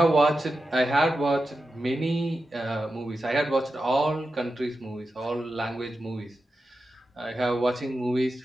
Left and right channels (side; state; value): both; normal; correlation 0.91